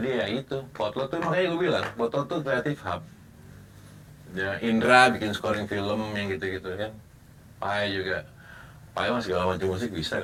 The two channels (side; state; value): both; identical; correlation 1.00